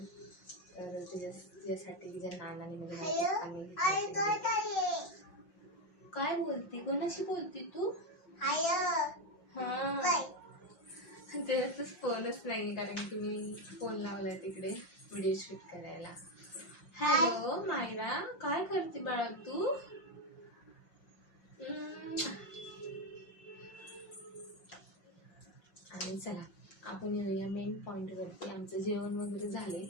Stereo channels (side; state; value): right; late; 5.6 ms